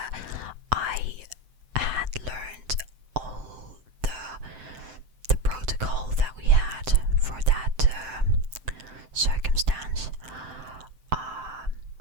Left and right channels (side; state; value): left; late; 7.8 ms